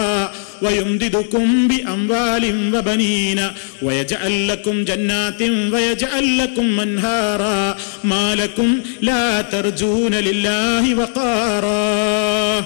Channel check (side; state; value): right; silent; digital silence